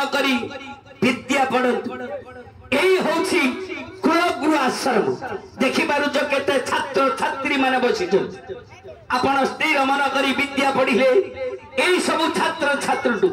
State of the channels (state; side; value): identical; both; correlation 1.00